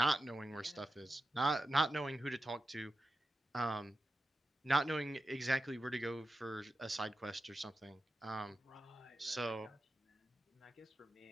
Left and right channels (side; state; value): both; normal; correlation 0.90